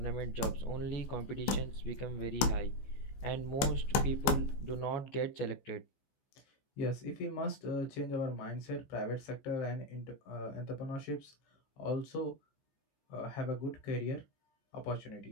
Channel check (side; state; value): right; late; 15 ms